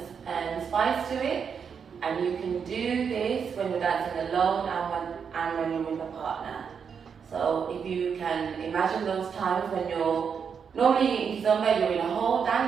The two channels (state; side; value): quieter; left; 6.7 dB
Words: and spice to it. And you can do this when you're dancing alone and when you're with a partner. So if you can imagine those times when normally in Kizomba you're in a whole